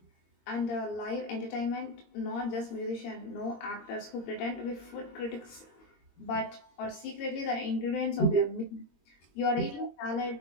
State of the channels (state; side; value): late; right; 22 ms